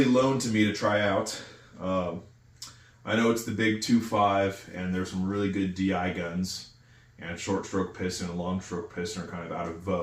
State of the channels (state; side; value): identical; both; correlation 1.00